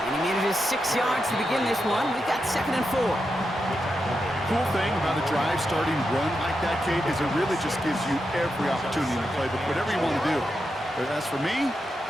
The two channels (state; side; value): normal; both; correlation 0.87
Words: And he manages 6 yards to begin this one. We've got second and 4. Cool thing about a drive starting run like that, Kate, is it really just gives you every opportunity in the playbook, whatever you want to do. But as for me,